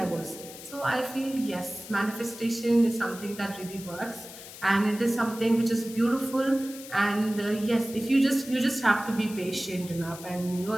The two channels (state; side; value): noise; left; hiss, 15 dB below the sound